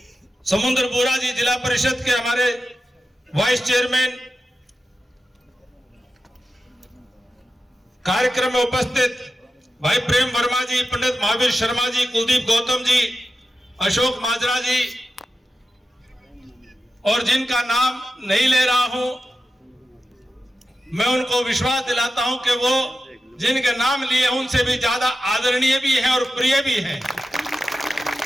समुद्र बोरा जी, जिला परिषद के हमारे वाइस चेयरमैन, कार्यक्रम में उपस्थित भाई प्रेम वर्मा जी, पंडित महावीर शर्मा जी, कुलदीप गौतम जी, अशोक माजरा जी, और जिनका नाम नहीं ले रहा हूं, मैं उनको विश्वास दिलाता हूं कि वो जिनके नाम लिए उनसे भी ज्यादा आदरणीय भी हैं और प्रिय भी हैं,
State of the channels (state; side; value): normal; both; correlation 0.91